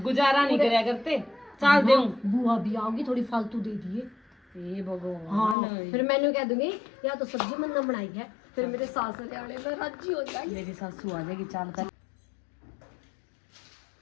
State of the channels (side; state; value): right; drops out; at 5.6 s